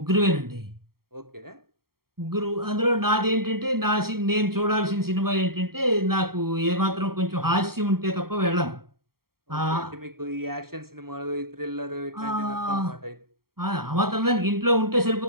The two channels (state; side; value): late; left; 0.93 ms